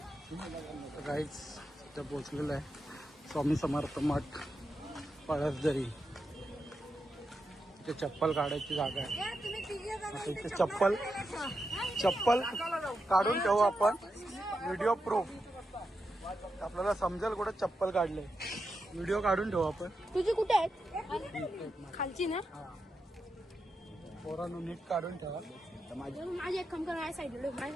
काहीच इथं पोहोचलेलं आहे. स्वामी समर्थ मठ पळसदरी. इथे चप्पल काढायची जागा आहे. आता इथे चप्पल काढून ठेवू आपण. व्हिडिओ प्रूफ आपल्याला समजेल कुठे चप्पल काढले. व्हिडिओ काढून ठेवू आपण. तुझी कुठे आहेत? खालची ना. पोरांनो नीट काढून ठेवा. माझी एक काम कर. माझ्या साईडला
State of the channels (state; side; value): normal; both; correlation 0.87